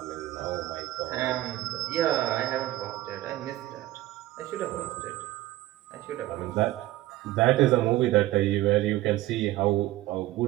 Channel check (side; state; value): left; quieter; 16.5 dB